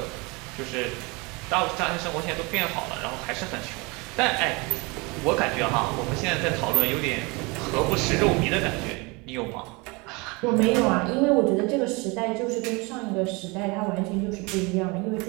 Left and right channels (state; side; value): quieter; left; 27.0 dB